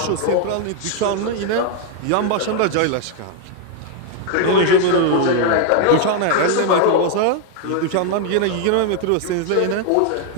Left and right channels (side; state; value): both; different; correlation 0.00